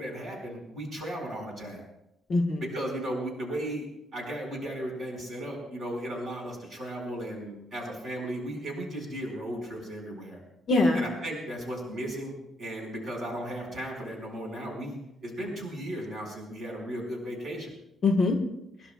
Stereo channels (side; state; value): both; normal; correlation 0.74